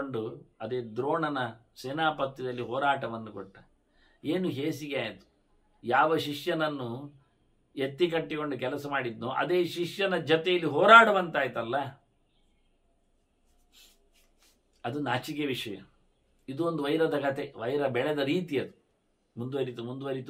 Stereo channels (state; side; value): identical; both; correlation 1.00